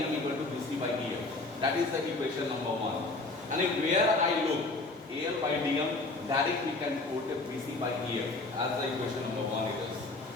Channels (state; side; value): quieter; right; 3.2 dB